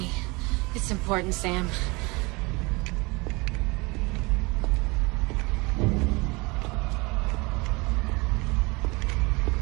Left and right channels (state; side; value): quieter; left; 26.0 dB